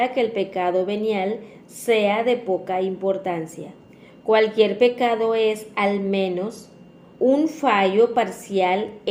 que el pecado venial sea de poca importancia. Cualquier pecado es, al menos, un fallo parcial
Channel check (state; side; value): identical; both; correlation 1.00